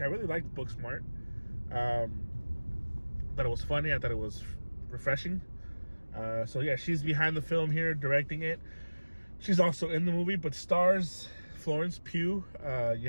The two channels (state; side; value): inverted; both; correlation -1.00